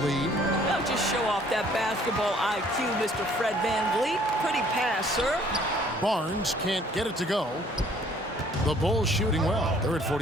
lead. Now just show off that basketball IQ, Mr. Fred Van Vliet. Pretty pass, sir. Barnes can't get it to go. The Bulls shooting well. They're at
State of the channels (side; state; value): both; normal; correlation 0.59